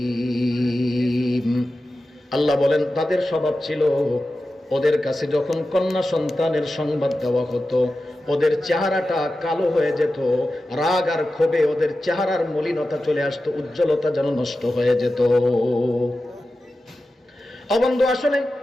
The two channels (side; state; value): both; normal; correlation 0.93